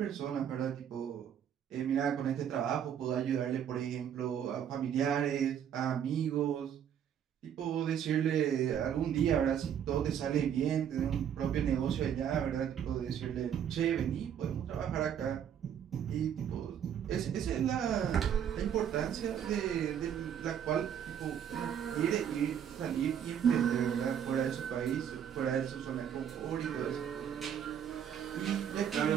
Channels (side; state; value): left; quieter; 9.0 dB